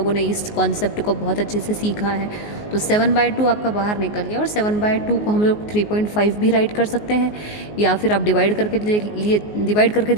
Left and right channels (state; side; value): late; right; 19 ms